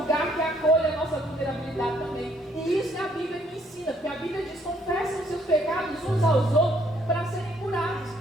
que acolha a nossa vulnerabilidade também. E isso a Bíblia me ensina, porque a Bíblia diz: confessem os seus pecados uns aos outros para serem curados.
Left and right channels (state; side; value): normal; both; correlation 0.66